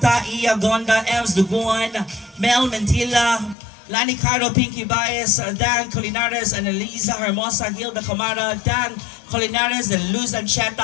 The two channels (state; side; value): drops out; right; at 3.6 s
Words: Iya Gonda, Ems Duguan, Mel Mentila, Lani Caro, Pinky Baez, Dan Colinares, Annalisa Hermosa, Hilda Camara, Dan Colinares, and Luz